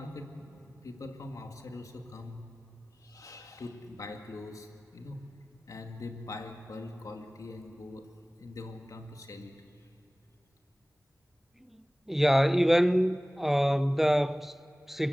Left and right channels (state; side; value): normal; both; correlation 0.98